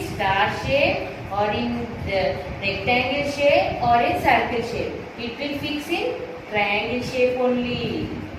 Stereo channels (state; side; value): identical; both; correlation 1.00